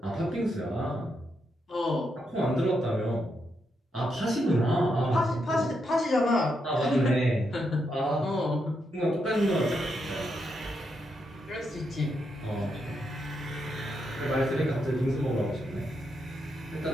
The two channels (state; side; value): normal; both; correlation 0.81